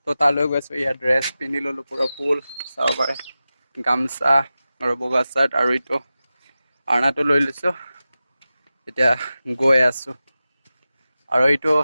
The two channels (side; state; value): both; inverted; correlation -0.94